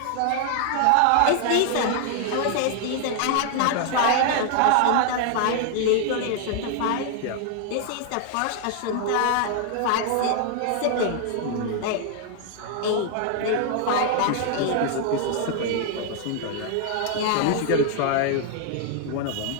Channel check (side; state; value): both; different; correlation 0.00